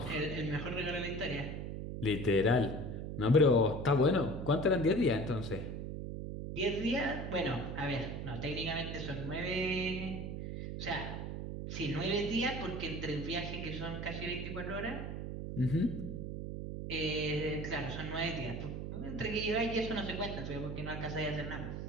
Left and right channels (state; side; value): noise; right; hum, 5 dB below the sound